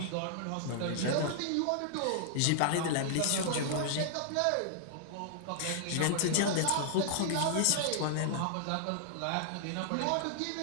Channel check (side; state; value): both; different; correlation -0.01